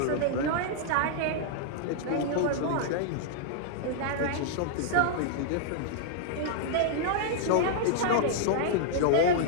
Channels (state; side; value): different; both; correlation -0.01